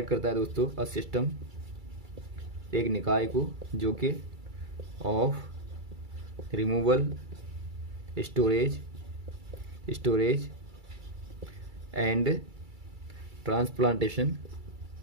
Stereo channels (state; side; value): late; left; 2.3 ms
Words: करता है दोस्तों अ सिस्टम, एक निकाय को जो कि of removal, storage and transplantation